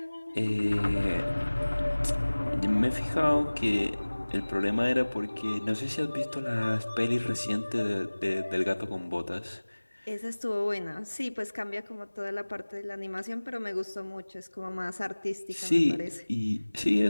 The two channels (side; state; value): both; inverted; correlation -1.00